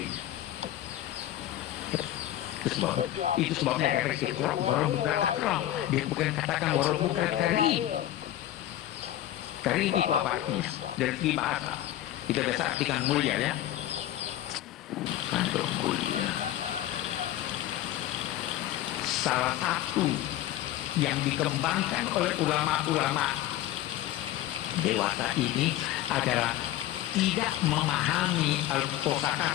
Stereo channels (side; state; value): right; quieter; 13.3 dB